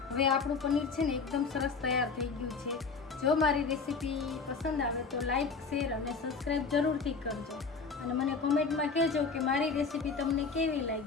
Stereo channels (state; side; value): quieter; right; 4.8 dB